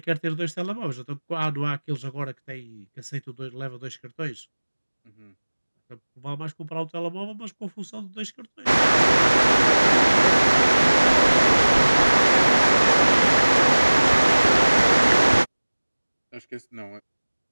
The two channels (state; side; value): inverted; both; correlation -1.00